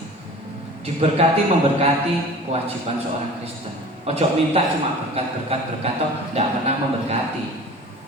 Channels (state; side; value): normal; both; correlation 0.41